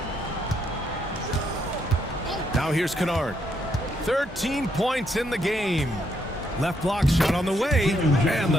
Now here's Kennard. 13 points in the game. Left block shot on the way. And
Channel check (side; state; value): both; normal; correlation 0.75